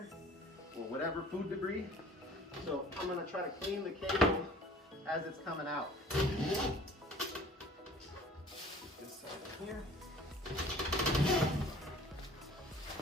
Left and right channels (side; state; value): both; normal; correlation 0.49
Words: or whatever food debris. So I'm gonna try to clean the cable as it's coming out. This side here.